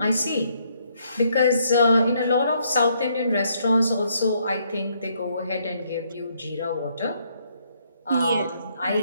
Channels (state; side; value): inverted; both; correlation -0.71